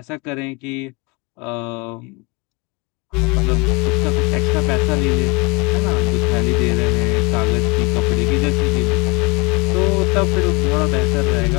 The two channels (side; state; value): right; quieter; 28.0 dB